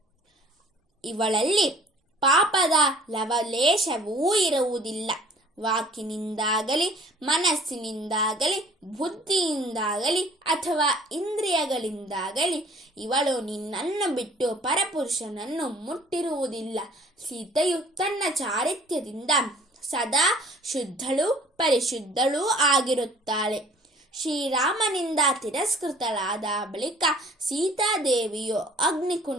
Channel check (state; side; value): normal; both; correlation 0.53